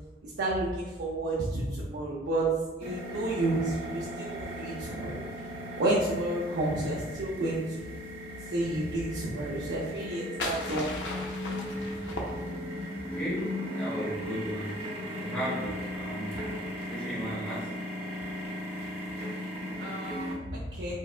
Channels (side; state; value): both; normal; correlation 0.50